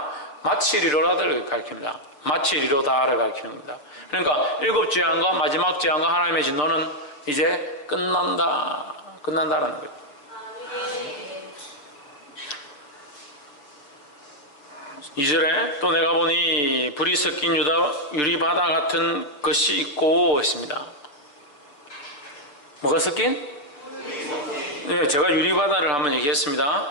마치리로다를 가리킵니다. 마치리로다를 가리키는 겁니다. 그러니까 일곱 재앙과 마지막 재앙과 하나님의 진노는 이제 끝난다라는 거예요. 이절에 또 내가 보니 불이 섞인 유리바다 같은 것이 있고 했습니다. 뭐가 섞인? 네, 제가 유리바다를 한번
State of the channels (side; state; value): right; late; 6.8 ms